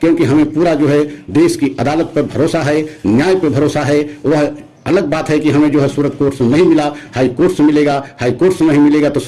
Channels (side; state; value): both; identical; correlation 1.00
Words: हमें पूरा जो है देश की अदालत पर भरोसा है, न्याय पर भरोसा है। वह अलग बात है कि हमें जो है सूरत कोर्ट से नहीं मिला, हाई कोर्ट से मिलेगा, हाई कोर्ट से नहीं मिलेगा तो